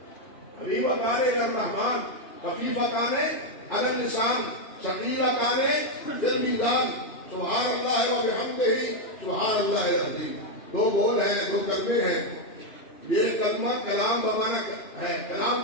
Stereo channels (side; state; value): right; late; 2.9 ms